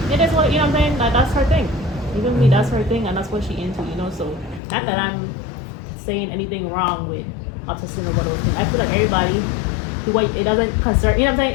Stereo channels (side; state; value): right; drops out; at 4.6 s